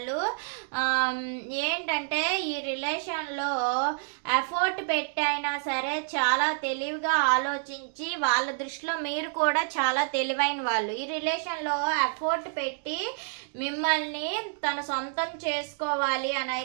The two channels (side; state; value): left; silent; digital silence